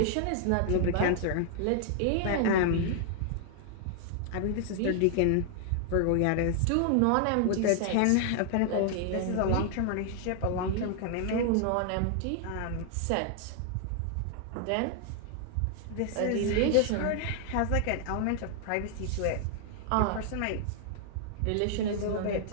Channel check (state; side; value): different; both; correlation 0.00